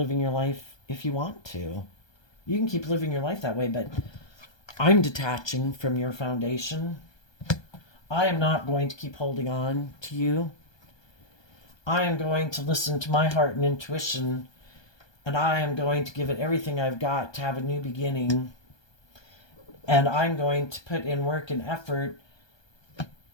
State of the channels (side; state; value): right; late; 1.2 ms